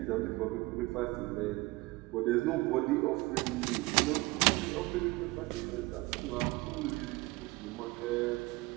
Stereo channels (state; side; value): quieter; left; 22.2 dB